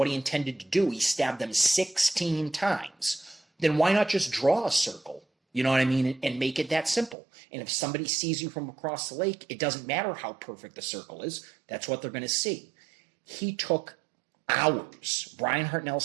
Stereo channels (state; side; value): drops out; left; at 7.2 s